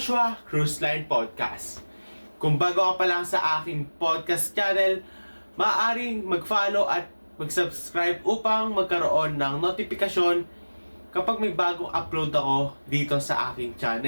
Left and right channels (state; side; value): inverted; both; correlation -1.00